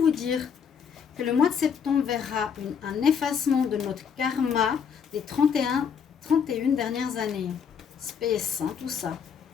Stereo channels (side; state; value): right; quieter; 7.0 dB